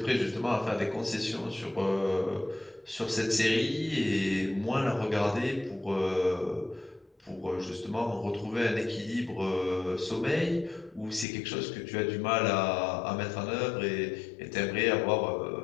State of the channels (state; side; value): drops out; right; at 11.2 s